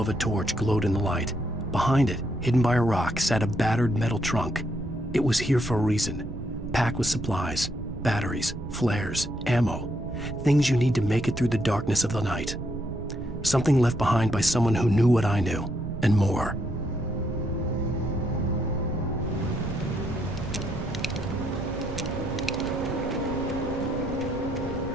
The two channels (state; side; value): noise; right; rumble, 9 dB below the sound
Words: a torch glowed in the light. Behind it, hidden by a rock, sat a battered metal trunk. It was here for a reason, packed with supplies, batteries, flares, ammo, things you need to make it through the darkness of the night. Something left behind by someone who knew what I knew, and more.